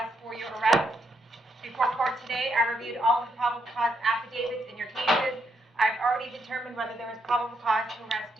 for your arrest. Before court today, I reviewed all of the probable cause affidavits in your cases. I've already determined whether there is probable cause to arrest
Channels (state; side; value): normal; both; correlation 0.77